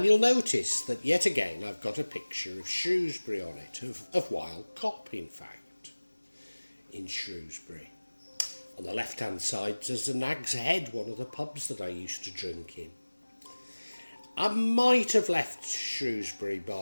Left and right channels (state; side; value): inverted; both; correlation -1.00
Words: you'll notice that yet again I've got a picture of Shrewsbury on it, of Wild Cop in fact, in Shrewsbury. On the left hand side there's the Nag's Head, one of the pubs that I used to drink in. I might have left Shrewsbury